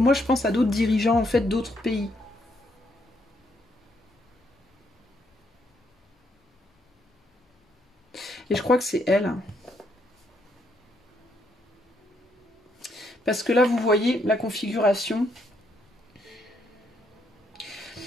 je pense à d'autres dirigeants en fait d'autres pays. Et je crois que c'est elle. Parce que là, vous voyez la configuration.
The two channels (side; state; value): both; normal; correlation 0.74